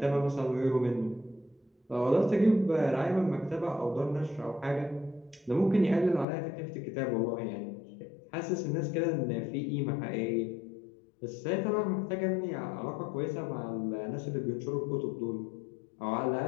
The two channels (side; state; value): right; drops out; at 6.2 s